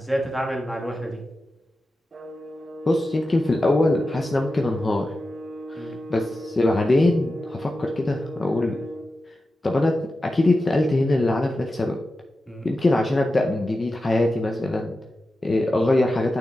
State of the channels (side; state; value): both; normal; correlation 0.92